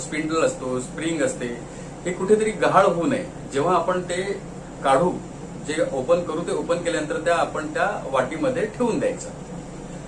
असतो, स्प्रिंग असते, हे कुठेतरी गहाळ होऊ नये. जेव्हा आपण ते काढू, जे ओपन करू, ते ओपन केल्यानंतर आपण त्या वाटीमध्ये ठेवून द्यायचं.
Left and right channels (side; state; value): both; identical; correlation 1.00